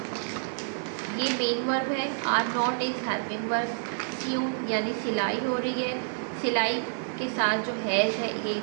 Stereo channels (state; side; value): silent; left; digital silence